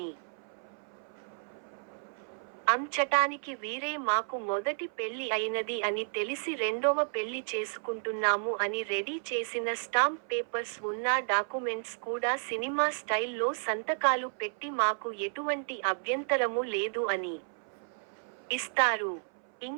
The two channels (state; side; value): silent; left; 56 dB below the other